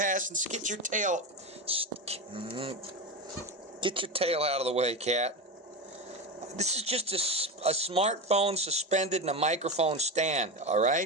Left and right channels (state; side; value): normal; both; correlation 0.20